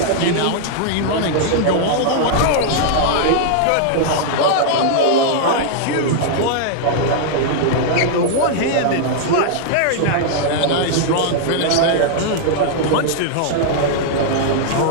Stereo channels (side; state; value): both; different; correlation -0.01